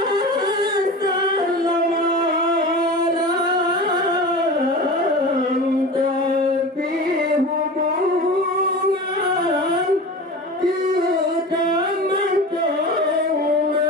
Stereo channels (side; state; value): both; normal; correlation 0.32